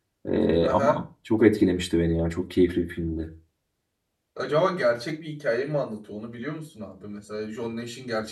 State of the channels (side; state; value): both; identical; correlation 1.00